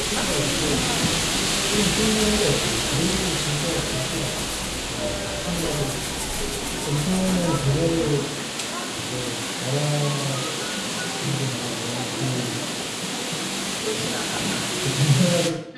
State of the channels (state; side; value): identical; both; correlation 1.00